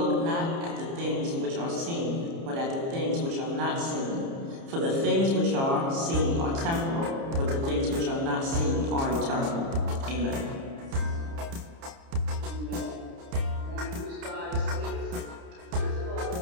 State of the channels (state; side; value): late; left; 30 ms